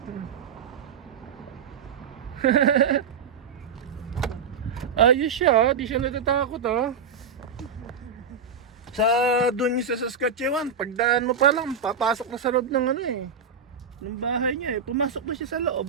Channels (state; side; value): quieter; left; 6.0 dB